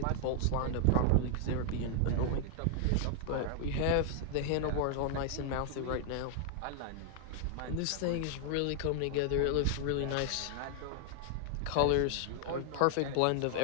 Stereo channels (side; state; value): both; different; correlation 0.00